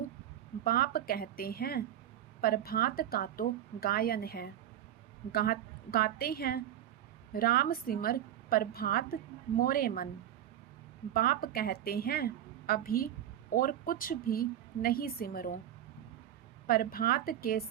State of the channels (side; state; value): left; quieter; 11.3 dB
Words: बाप कहते हैं प्रभात का तो गायन है। गाते हैं राम सिमर प्रभात मोरे मन। बाप कहते हैं अभी और कुछ भी नहीं सिमरो। प्रभात के